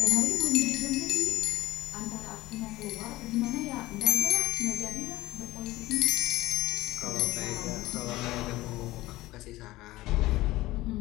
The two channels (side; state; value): right; quieter; 17.9 dB